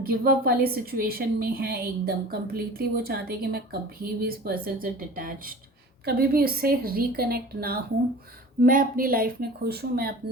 गिव अप वाली सिचुएशन में है एकदम कम्प्लीटली। वो चाहते हैं कि मैं कभी भी इस पर्सन से डिटैच्ड, कभी भी उससे रिकनेक्ट ना हूँ, मैं अपनी लाइफ में खुश हूँ, मैं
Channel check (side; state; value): both; normal; correlation 0.40